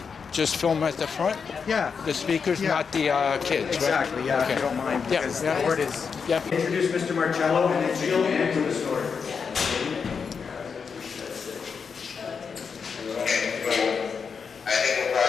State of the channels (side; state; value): right; quieter; 5.9 dB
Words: Just film at the front? Yeah. The speakers, not the kids, Exactly, right? yeah, Okay. if you don't mind, Yeah, because yeah. the board is... Yeah. Introduce Mr. Marcello, and then she'll answer the story. I think we'll